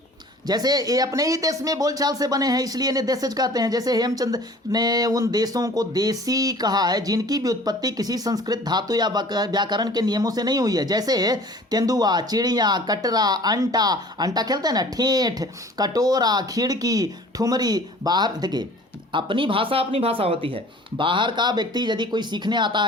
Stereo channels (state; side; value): normal; both; correlation 0.47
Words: जैसे ये अपने ही देश में बोलचाल से बने हैं, इसलिए इन्हें देशज कहते हैं। जैसे हेमचंद ने उन देशों को देशी कहा है जिनकी व्युत्पत्ति किसी संस्कृत धातु या व्याकरण के नियमों से नहीं हुई है। जैसे तेंदुआ, चिड़िया, कटरा, अंटा, अंटा खेलते हैं ना, ठेठ, कटोरा, खिड़की, ठुमरी। बाहर देखिए अपनी भाषा होती है। बाहर का व्यक्ति यदि कोई सीखने आता